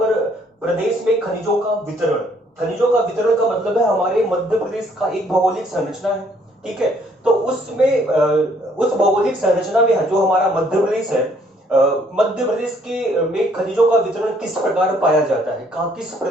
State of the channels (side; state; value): both; normal; correlation 0.64